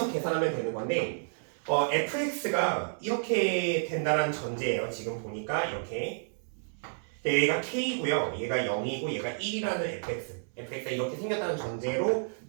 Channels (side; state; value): left; silent; 57 dB below the other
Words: 계산하면 되는 건데 fx가 이렇게 된다는 전제예요. 지금 보니까 이렇게 얘가 k고요. 얘가 0이고 얘가 1이라는 fx가 이렇게 생겼다는 전제로